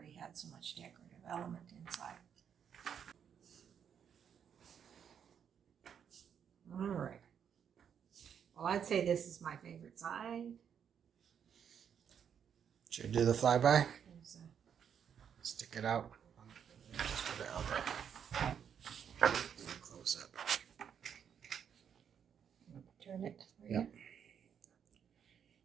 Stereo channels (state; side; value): quieter; left; 8.0 dB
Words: had so much decorative element inside. All right. Well, I'd say this is my favorite side. Should we do the flyby? There's Stick it out. Just put it out there. Close up. turn it. Yep.